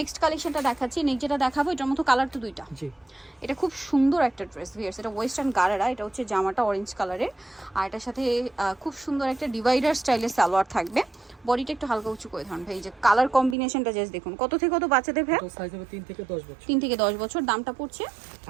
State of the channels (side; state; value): left; drops out; at 13.6 s